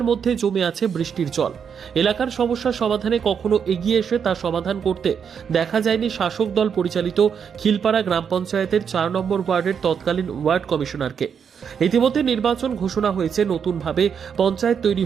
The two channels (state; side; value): quieter; left; 7.1 dB